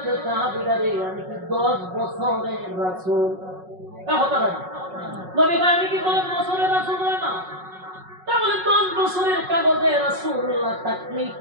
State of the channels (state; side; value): late; left; 5.4 ms